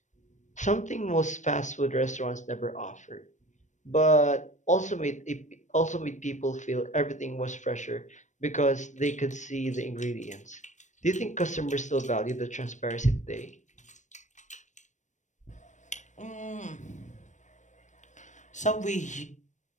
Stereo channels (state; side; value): late; right; 0.35 ms